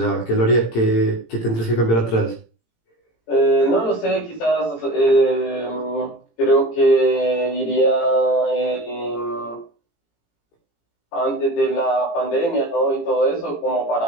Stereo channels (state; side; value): late; right; 18 ms